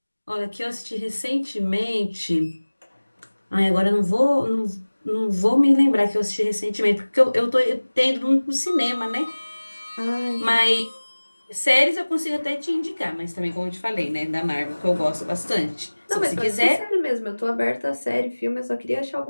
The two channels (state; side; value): inverted; both; correlation -1.00